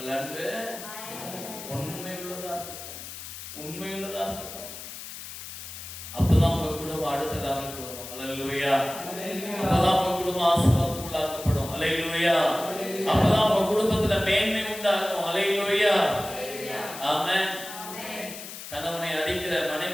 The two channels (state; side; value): noise; left; hiss, 11 dB below the sound